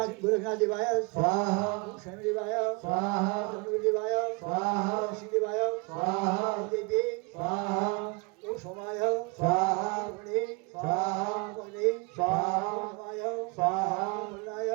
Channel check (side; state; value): left; quieter; 29.0 dB